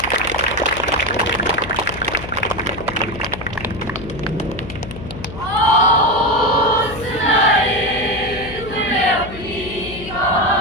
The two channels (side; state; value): left; noise; hum, 12 dB below the sound